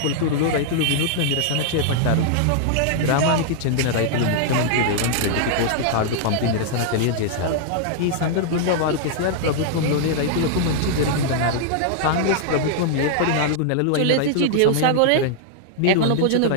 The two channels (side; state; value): both; different; correlation -0.01